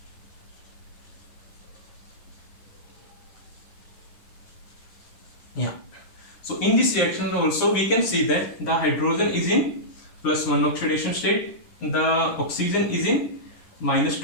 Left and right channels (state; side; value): late; right; 10 ms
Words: Yeah. So in this reaction also we can see that the hydrogen is in +1 oxidation state, the oxygen is in